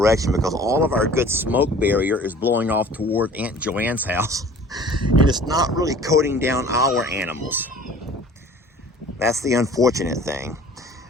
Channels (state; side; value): normal; both; correlation 0.47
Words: because all of our good smoke barrier is blowing off toward Aunt Joanne's house. And it's not really coating down our animals. That's the unfortunate thing.